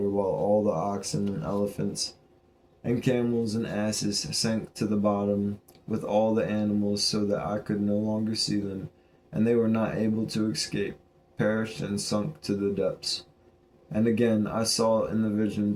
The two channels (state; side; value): identical; both; correlation 1.00